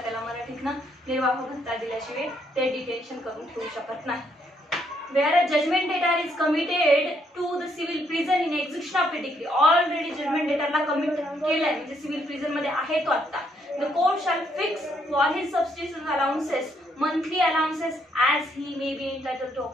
त्याला मराठीतनं, निर्वाह भत्ता दिल्याशिवाय ते डिटेन्शन करून ठेवू शकत नाही. Where a judgment debtor is committed to the civil prison in execution of a decree, already judgment debtorला कमिट केलंय म्हणजे सिव्हिल प्रिझन मध्ये आहे तो आता. The court shall fix for his subsistence allowances monthly allowances as he may be entitled to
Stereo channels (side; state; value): both; normal; correlation 0.73